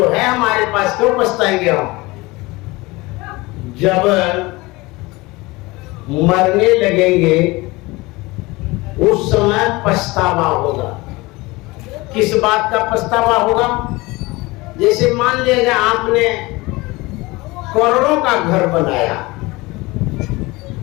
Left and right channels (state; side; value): quieter; right; 22.4 dB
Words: है हमारे पास, क्यों पछताएंगे हम। जब मरने लगेंगे उस समय पछतावा होगा। किस बात का पछतावा होगा? जैसे मान लीजिए आपने करोड़ों का घर बनाया,